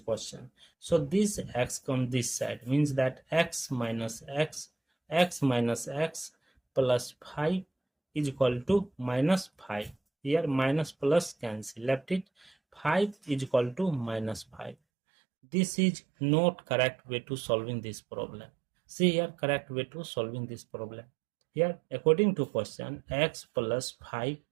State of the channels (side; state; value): left; drops out; at 14.8 s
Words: So this x comes this side, means that x minus x plus 5 is equal to minus 5. Here minus plus cancel, left it 5 is equal to minus 5. This is not correct way to solving this problem. See here, correct way to solving this problem. Here, according to question, x plus 5